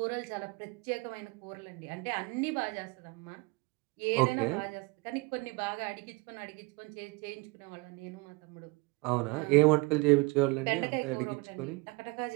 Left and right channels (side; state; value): left; quieter; 26.2 dB